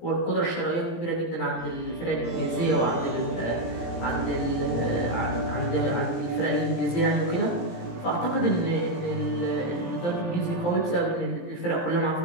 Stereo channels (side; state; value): right; late; 17 ms